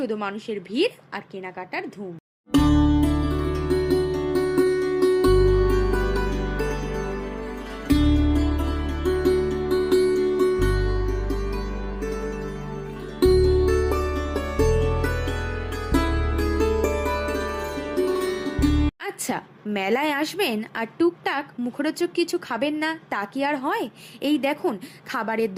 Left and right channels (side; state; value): both; identical; correlation 1.00